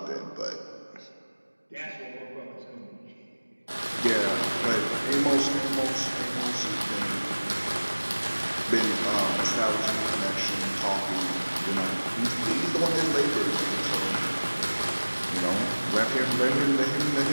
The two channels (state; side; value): inverted; both; correlation -1.00